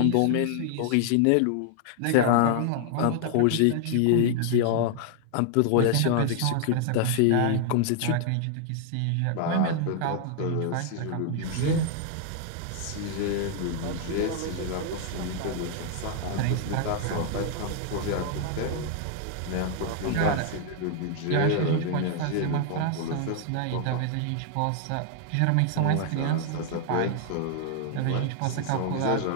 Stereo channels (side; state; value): both; different; correlation 0.00